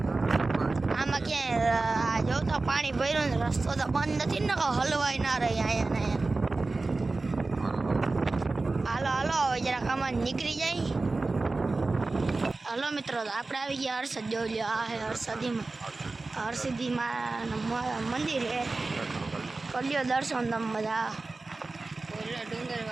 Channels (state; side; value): quieter; left; 3.5 dB